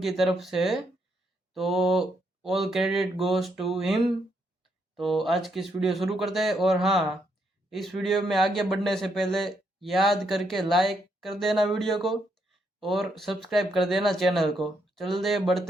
की तरफ से है। तो all credit goes to him. तो आज की इस वीडियो शुरू करते हैं। और हाँ, इस वीडियो में आगे बढ़ने से पहले याद करके लाइक कर देना वीडियो को और सब्सक्राइब कर देना चैनल को। चलते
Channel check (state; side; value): normal; both; correlation 0.76